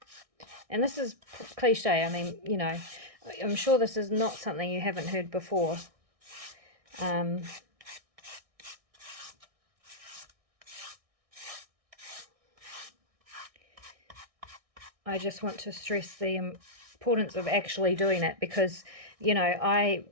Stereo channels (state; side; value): late; left; 1.6 ms